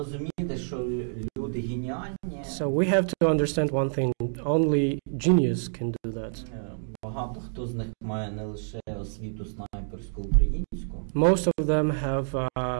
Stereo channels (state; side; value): silent; left; digital silence